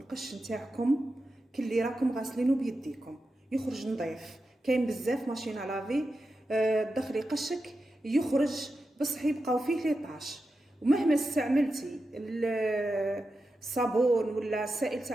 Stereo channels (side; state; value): both; normal; correlation 0.90